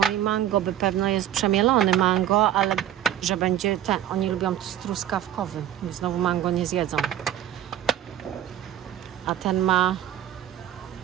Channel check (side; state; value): left; quieter; 11.5 dB